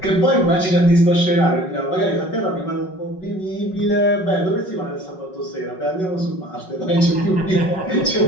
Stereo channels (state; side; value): late; right; 5.4 ms